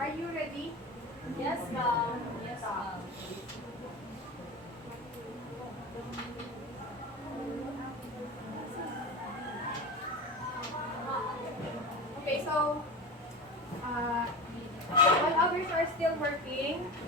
you ready? Yes, ma'am. Yes, ma'am. Okay, so while others are still working,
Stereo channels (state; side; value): normal; both; correlation 0.27